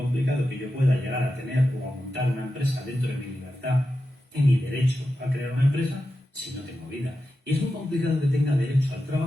que yo pueda llegar a tener o a montar una empresa dentro de mi libertad y mi derecho a crear una empresa si no tengo vida. Y es muy complicado que tenga derecho al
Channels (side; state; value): both; normal; correlation 0.91